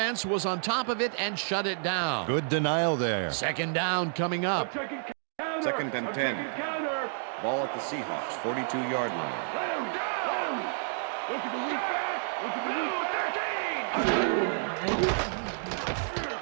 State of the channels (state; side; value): silent; left; digital silence